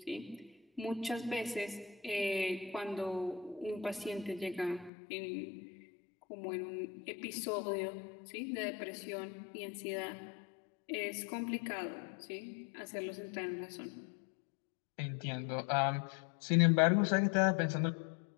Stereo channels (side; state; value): right; drops out; at 4.9 s